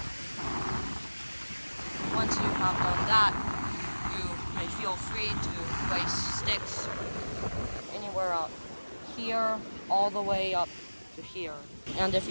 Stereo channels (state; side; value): inverted; both; correlation -1.00